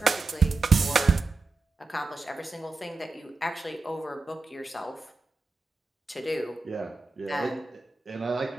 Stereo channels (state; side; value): quieter; left; 3.8 dB